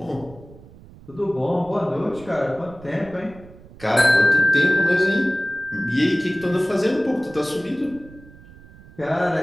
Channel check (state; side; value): noise; right; rumble, 21 dB below the sound